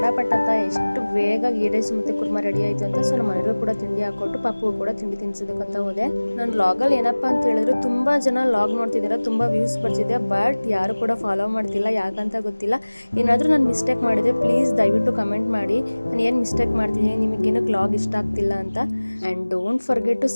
ಅಂತ ಎಷ್ಟು ಬೇಗ ಗೀ ರೈಸ್ ಮತ್ತು ಕುರ್ಮಾ ರೆಡಿ ಆಯಿತು ಅಂತ. ಸೊ ನಮ್ಮ ಮನೆಗೂ ಕೂಡ ತಿಂಡಿ ಹಾಕ್ಕೊಟ್ಟು ಪಾಪು ಕೂಡ ತಿಂಡಿ ತಿನ್ಸೋದಕ್ಕಂತ ಹೋದೆ. ನನ್ನ ಲಾಗಲ್ಲಿ ಏನಪ್ಪ ಅಂತ ಹೇಳಿದ್ರೆ, ತುಂಬ ಜನ ಲಾಗ್ ನೋಡ್ತಿದ್ದೀರಾ, ತುಂಬ ವ್ಯೂಸ್ ಬರ್ತಿದೆ, ಬಟ್ ಯಾರು ಕೂಡ ಫಾಲೋ ಮಾಡ್ತಿಲ್ಲ, ಯಾಕಂತ ಗೊತ್ತಿಲ್ಲ. ಏನಾದರೂ ನಾನು ಮಿಸ್ಟೇಕ್ ಮಾಡಿದೆ ಪ್ಲೀಸ್ ದಯವಿಟ್ಟು ಕಮೆಂಟ್ ಮಾಡಿ, ನಾನು ಏನು ಮಿಸ್ಟೇಕ್ ಮಾಡ್ತೀನಿ, ನಿಮಗೇನಕ್ಕೆ ಲಾಗ್ ಇಷ್ಟ ಆಗ್ತಿಲ್ಲ ಅಂತ. And don't forget to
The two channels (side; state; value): both; inverted; correlation -1.00